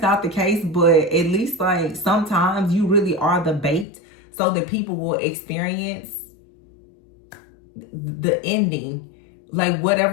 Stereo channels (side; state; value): right; drops out; at 3.9 s